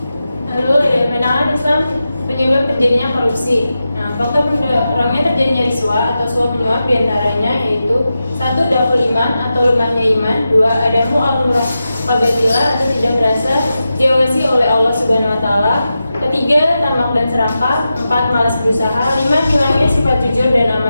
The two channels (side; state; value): both; inverted; correlation -0.91